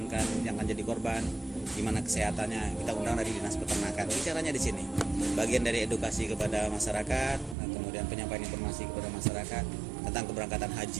yang akan jadi korban, gimana kesehatannya. Kita undang dari dinas peternakan. Bicaranya di sini. Bagian dari edukasi kepada masyarakat, kemudian penyampaian informasi kepada masyarakat tentang keberangkatan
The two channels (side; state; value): left; drops out; at 7.6 s